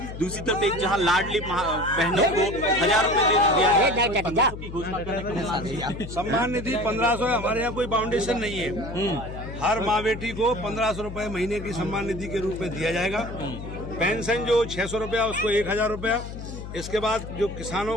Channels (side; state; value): left; noise; hum, 10 dB below the sound